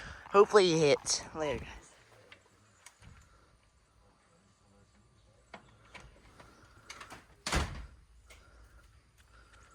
Hopefully it hits. Later, guys.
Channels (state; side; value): identical; both; correlation 1.00